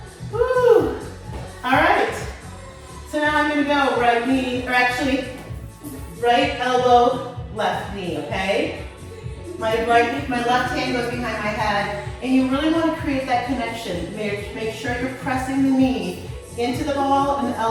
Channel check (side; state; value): both; identical; correlation 1.00